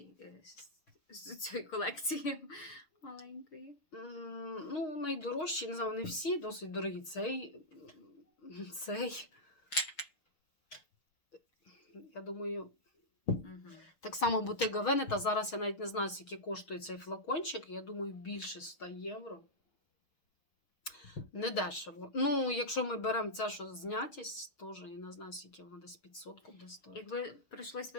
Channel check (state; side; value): late; right; 6.4 ms